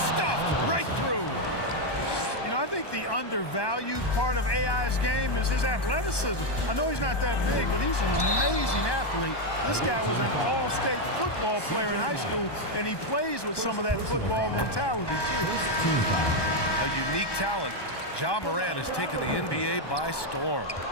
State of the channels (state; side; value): late; right; 1.2 ms